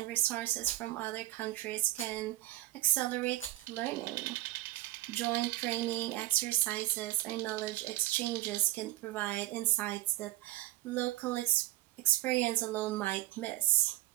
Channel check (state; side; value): quieter; left; 16.2 dB